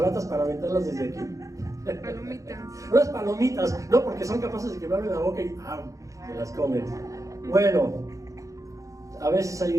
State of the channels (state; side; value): late; left; 0.16 ms